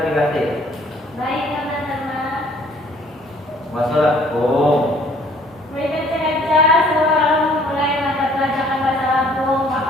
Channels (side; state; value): both; normal; correlation 0.58